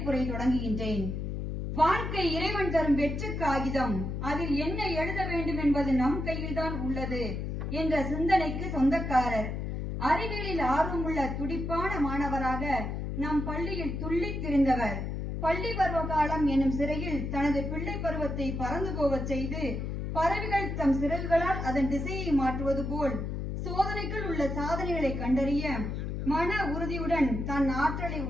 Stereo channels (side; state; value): left; noise; hum, 3 dB below the sound